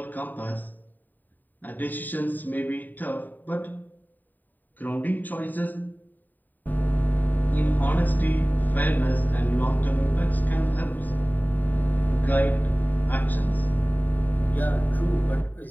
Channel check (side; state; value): right; late; 0.088 ms